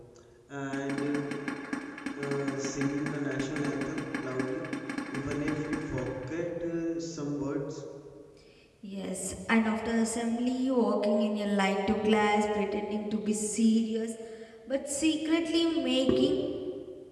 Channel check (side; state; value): both; identical; correlation 1.00